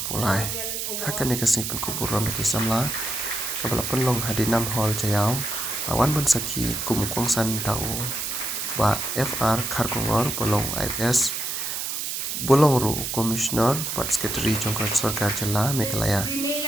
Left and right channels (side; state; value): right; noise; hiss, 3 dB below the sound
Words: pulai hakan ke sing Pynkupburom ke Samla kalapan long hadinam hall jayau lawan ban saki kum kongsan tau ba FR Kharkongor bolong IS bolong ru commissioner pat secretary jongkas sarkar jela Meghalaya